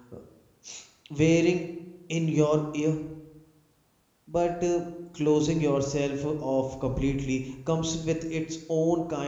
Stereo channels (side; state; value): both; identical; correlation 1.00